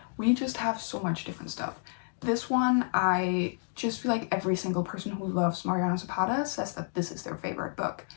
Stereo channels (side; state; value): right; silent; 58 dB below the other